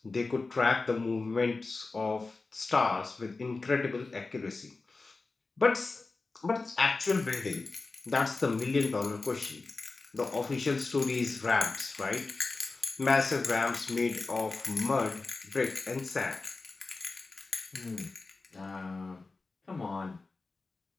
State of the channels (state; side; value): quieter; right; 3.7 dB